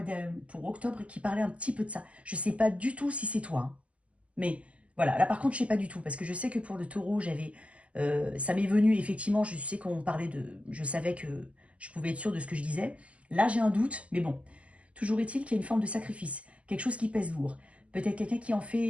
pour octobre qui parlait un petit peu de ça. Je ne sais pas du tout si c'est toi, hein. Mais voilà, là par contre, je sais pas du tout, parce que je sais que pour le taureau, ça m'est venu, effectivement, je sais qu'on parlait de... Je savais que je pouvais être sûre de ce que je disais. Là, j'ai un doute, mais bon. Toujours est-il qu'il y a une forme de sacrifice, quelque chose qui pèse lourd. Peut-être quelqu'un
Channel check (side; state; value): left; late; 0.063 ms